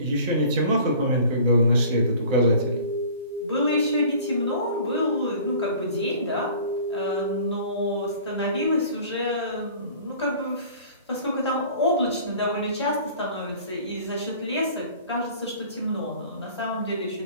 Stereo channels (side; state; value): both; inverted; correlation -0.46